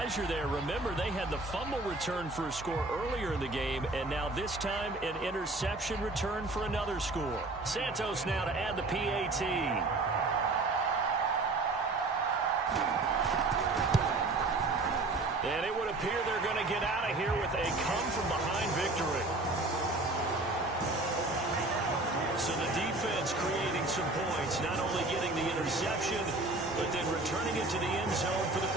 there. Remember, they had the fumble return for a score earlier in the game, and now this time an interception return for another score. Santos now to add the PAT. And it would appear they're going to get out of here with a come-from-behind victory. So the defense creating some points, not only getting the interception, but then returning it to the end zone for the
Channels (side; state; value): left; quieter; 3.0 dB